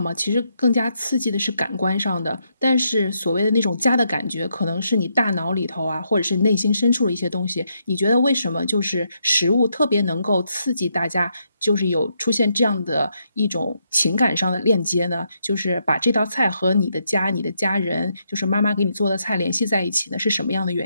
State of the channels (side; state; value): both; inverted; correlation -0.78